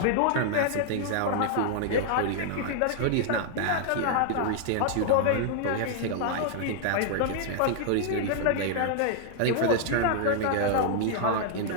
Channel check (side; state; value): both; different; correlation -0.01